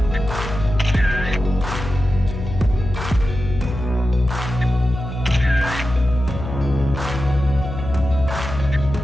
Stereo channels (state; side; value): noise; left; hum, 7 dB below the sound